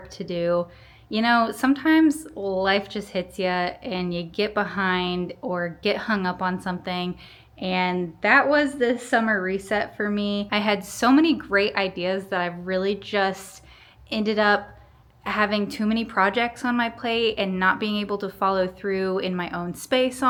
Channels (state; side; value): identical; both; correlation 1.00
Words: to do. You know, sometimes life just hits you and you get behind or get hung up on something. And that was the summer reset for me. I had so many great ideas that I really just ended up having too many projects on my plate and not being able to follow through in my own space